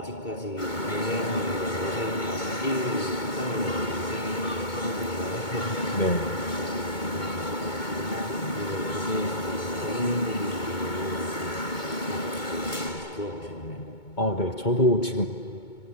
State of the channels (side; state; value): right; late; 2.2 ms